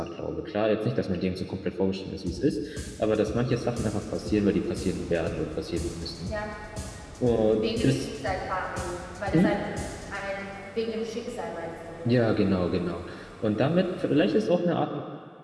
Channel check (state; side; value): identical; both; correlation 1.00